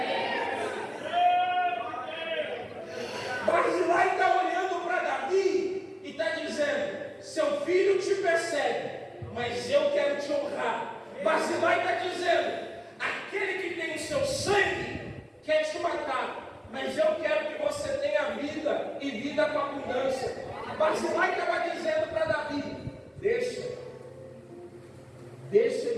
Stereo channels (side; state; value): both; identical; correlation 1.00